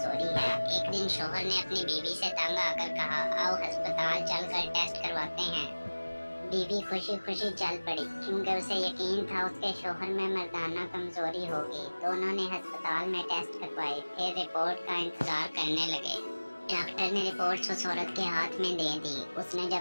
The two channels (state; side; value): inverted; both; correlation -1.00